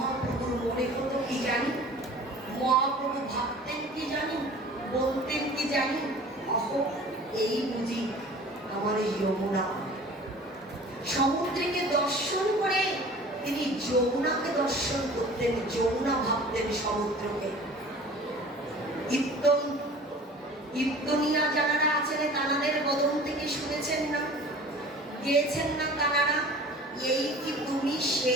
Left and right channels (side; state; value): both; normal; correlation 0.44